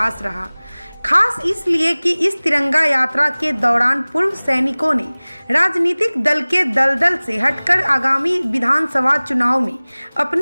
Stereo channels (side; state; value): both; inverted; correlation -1.00